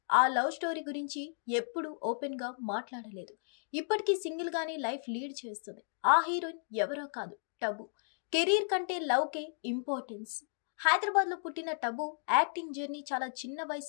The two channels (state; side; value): silent; right; digital silence